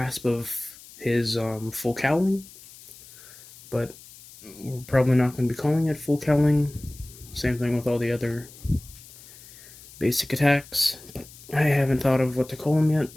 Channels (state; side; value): noise; left; hiss, 20 dB below the sound